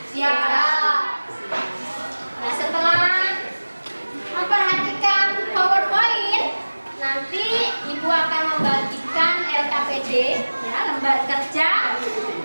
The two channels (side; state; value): both; inverted; correlation -1.00